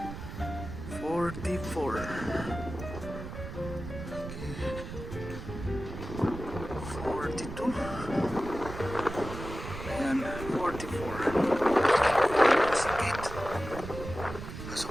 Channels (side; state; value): right; noise; rumble, 9 dB below the sound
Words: 44. Okay. 42. Ayan, 44. Sa gate. Pasok